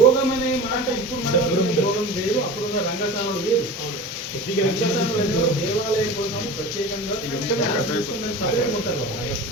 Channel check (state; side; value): normal; both; correlation 0.34